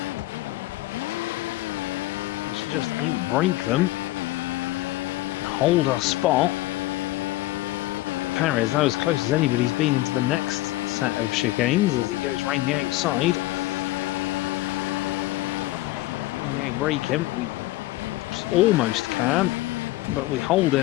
just outbrake them and hold our spot. Perez, that was as close as anybody's been into the next set of chicanes as he goes round the outside. When we outbrake him, we almost can, but we hold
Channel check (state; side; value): quieter; right; 17.9 dB